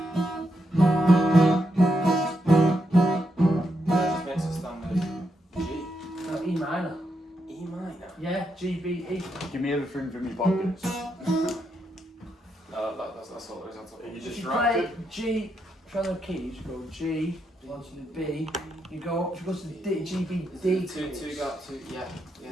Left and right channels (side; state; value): both; normal; correlation 0.82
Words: Just makes a standard G. No, E minor. E minor. Yeah, G, B, E. Give me everything from your pockets. That's all there is. That's all. Are you If you distracted? play G, try the keys, you go G, onto the B, you go to the D, G, B, D. Two, yeah.